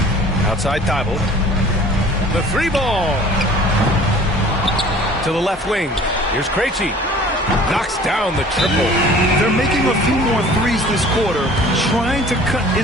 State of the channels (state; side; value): normal; both; correlation 0.48